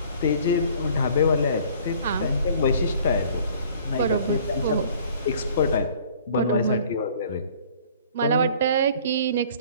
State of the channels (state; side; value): inverted; both; correlation -0.52